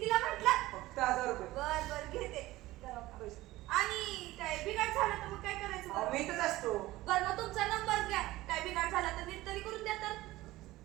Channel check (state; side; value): quieter; left; 17.6 dB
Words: म्हटलं? फक्त 1000 रुपये. बर बर घेते. आणि काय बिघाड झालं तर मग काय करायचं अहो, बरं? मी इथंच असतो. बरं मग तुमचा नंबर घ्या. काय बिघाड झाला तर नीट तरी करून द्या तर.